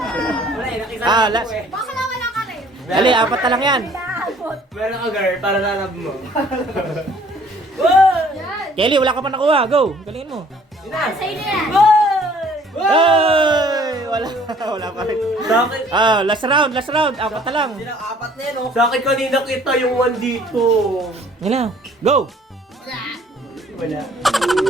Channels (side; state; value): both; normal; correlation 0.57